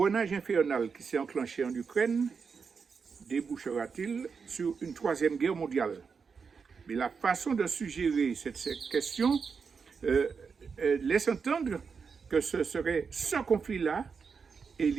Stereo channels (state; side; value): quieter; left; 5.6 dB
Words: infernal qui s'est enclenché en Ukraine débouchera-t-il sur une troisième guerre mondiale? Mais la façon de suggérer cette question laisse entendre que ce serait ce conflit-là